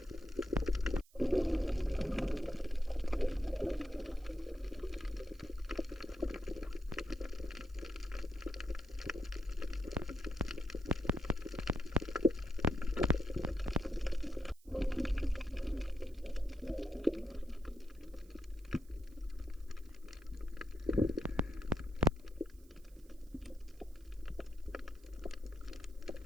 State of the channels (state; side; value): noise; right; hiss, 28 dB below the sound